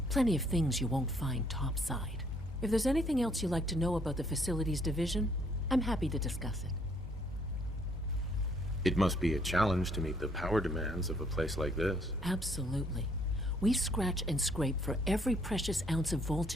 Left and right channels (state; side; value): normal; both; correlation 0.66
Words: Plenty of things you won't find topside. If there's anything else you'd like to know about the Facilities Division, I'm happy to discuss it. It must be a challenge to meet the power demands of a place like this. Absolutely. We scratch and scrape for every precious ounce of